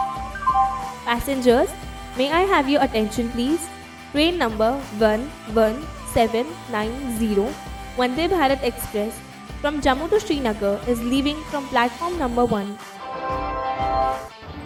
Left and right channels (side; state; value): both; identical; correlation 1.00